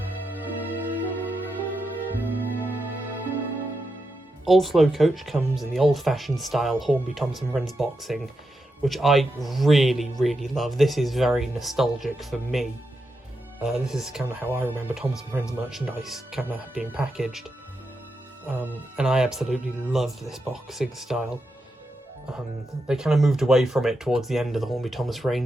Old Slow Coach comes in the old-fashioned style Hornby Thomas & Friends boxing, which I really love. This is very nostalgic for me. This is kind of how I remember Thomas & Friends merchandise kind of being packaged. And I absolutely love this boxing style. They kind of moved away from it towards the end of the Hornby Thomas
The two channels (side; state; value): both; normal; correlation 0.86